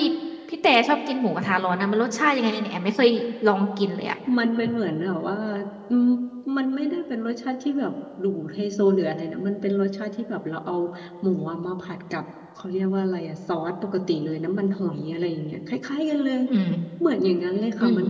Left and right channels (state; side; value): identical; both; correlation 1.00